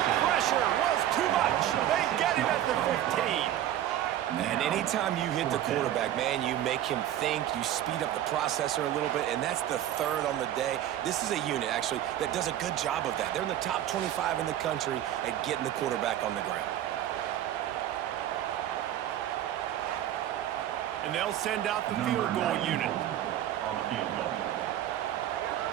pressure was too much. They get him at the 15. And anytime you hit the quarterback, man, you make him think, you speed up the processor a little bit, and that's the third on the day. This is a unit, actually, that does a good job of that. They're in the top 25 in the country at getting the quarterback on the ground. And they'll send out the field goal unit. On the field goal.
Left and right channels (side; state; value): left; quieter; 11.9 dB